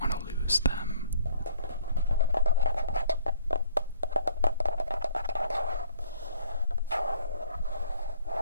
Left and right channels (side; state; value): both; inverted; correlation -0.57